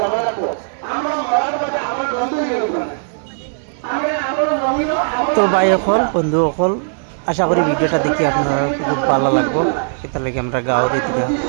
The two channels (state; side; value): silent; left; 62 dB below the other